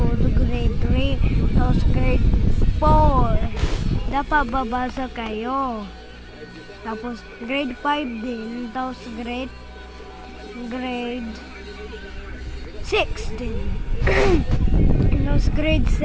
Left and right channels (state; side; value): identical; both; correlation 1.00